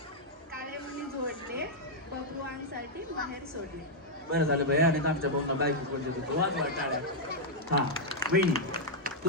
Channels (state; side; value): normal; both; correlation -0.04